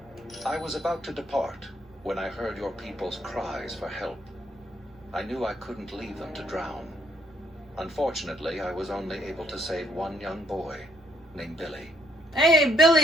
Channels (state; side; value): normal; both; correlation 0.69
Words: I was about to depart when I heard your people's cries for help. I knew I couldn't leave them to drown. Unfortunately, I was only able to save one young boy named Billy. Hey,